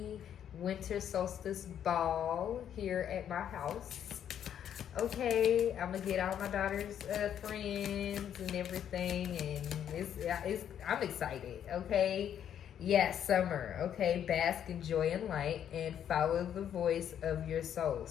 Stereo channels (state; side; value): quieter; right; 9.5 dB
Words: winter solstice ball here at my house. Okay, I'm going to get all my daughter's friends and everything. And I'm excited, okay? Yes, summer, okay? Bask in joy and light and follow the voice of your soul,